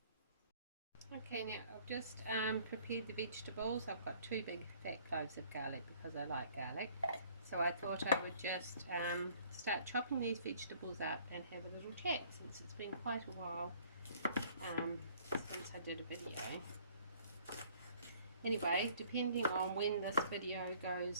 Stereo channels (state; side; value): inverted; both; correlation -0.57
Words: Okay, now I've just prepared the vegetables. I've got 2 big fat cloves of garlic because I like garlic. So I thought I would just start chopping these vegetables up and have a little chat, since it's been quite a while since I did a video. Anyway, depending on when this video